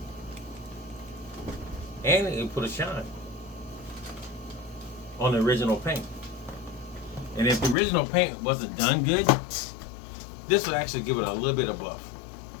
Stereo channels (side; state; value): right; drops out; at 7.8 s